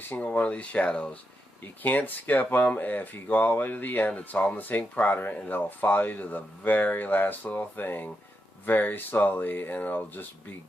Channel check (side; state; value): both; normal; correlation 0.85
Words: single one of these shadows. You can't skip them. If you go all the way to the end, it's all in the same quadrant, and it'll follow you to the very last little thing very slowly, and it'll just be